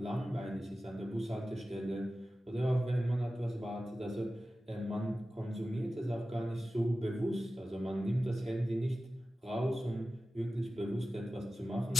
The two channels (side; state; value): both; normal; correlation 0.94